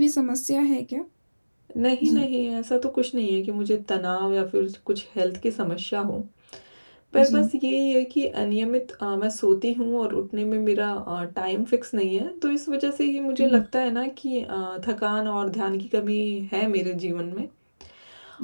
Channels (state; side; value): inverted; both; correlation -1.00